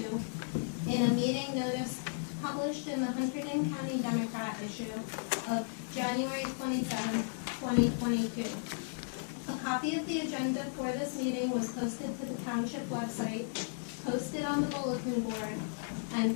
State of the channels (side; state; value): right; silent; digital silence